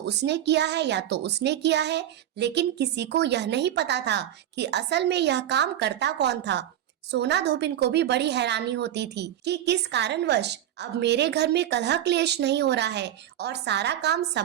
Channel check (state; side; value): quieter; left; 11.5 dB